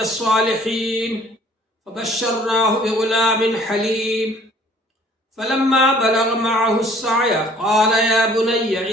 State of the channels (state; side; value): normal; both; correlation 0.56